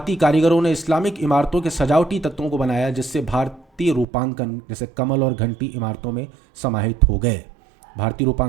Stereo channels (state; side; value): drops out; left; at 4.0 s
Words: कारीगरों ने इस्लामिक इमारतों के सजावटी तत्वों को बनाया, जिससे भारतीय रूपांकन जैसे कमल और घंटी इमारतों में समाहित हो गए। भारतीय